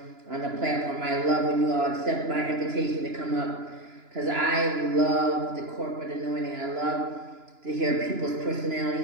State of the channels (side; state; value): left; late; 2.9 ms